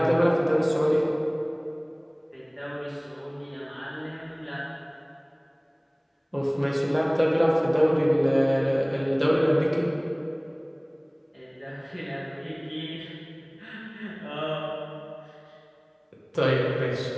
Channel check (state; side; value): identical; both; correlation 1.00